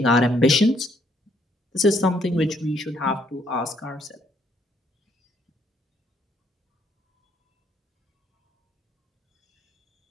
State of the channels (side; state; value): both; normal; correlation 0.69